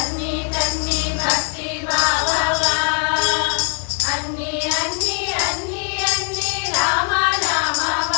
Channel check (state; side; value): quieter; right; 39.4 dB